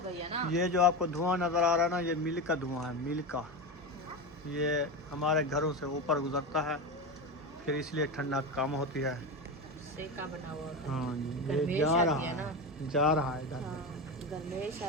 गई है ना। ये जो आपको धुआं नजर आ रहा है ना, ये मिल का धुआं है, मिल का। ये हमारे घरों से ऊपर गुजरता है, फिर इसलिए ठंडा कम होती है। सेका बना हुआ होता है। हाँ जी, ये गर्मेश जा आती रहा है है ना। जा रहा है इधर। हाँ गर्मेश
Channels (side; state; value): both; normal; correlation 0.20